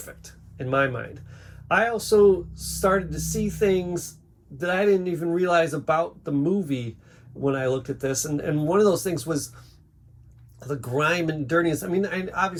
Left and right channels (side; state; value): both; identical; correlation 1.00